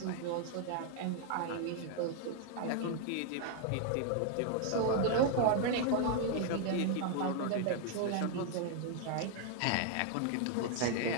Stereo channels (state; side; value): different; both; correlation 0.00